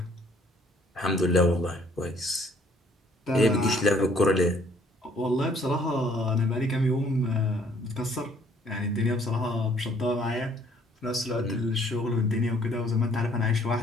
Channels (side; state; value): both; normal; correlation 0.62